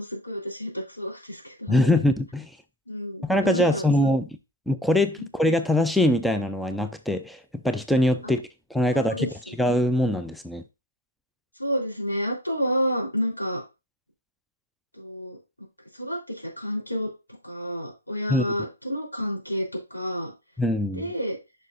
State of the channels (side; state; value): both; normal; correlation 0.41